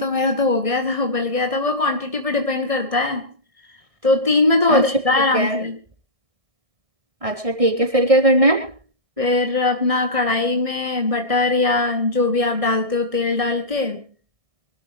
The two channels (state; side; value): late; left; 1.6 ms